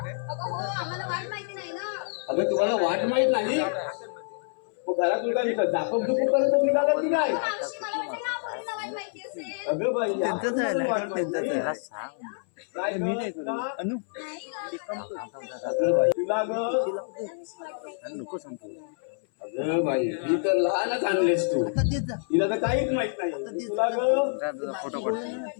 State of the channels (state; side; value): silent; right; 60 dB below the other